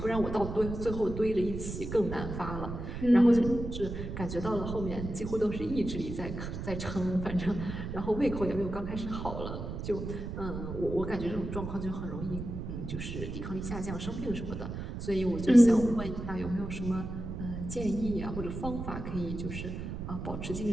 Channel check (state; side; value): noise; right; rumble, 6 dB below the sound